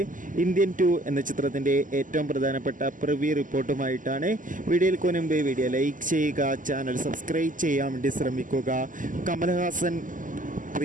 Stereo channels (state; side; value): late; left; 0.38 ms